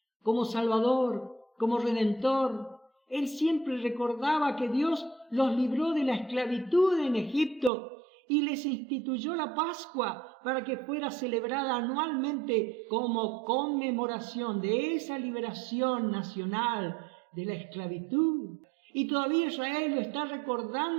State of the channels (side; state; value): left; drops out; at 7.7 s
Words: como salvador, como redentor, él siempre recordaba que Dios los libró de la esclavitud en Egipto y les instituyó la Pascua para que fuera celebrada anualmente como conmemoración de esa liberación nacional de la esclavitud. Y todavía Israel lo está